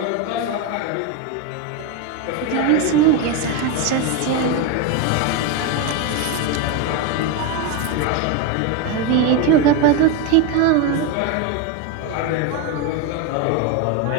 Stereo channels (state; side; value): different; both; correlation 0.03